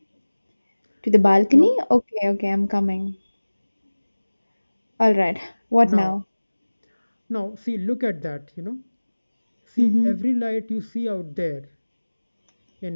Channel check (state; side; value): inverted; both; correlation -1.00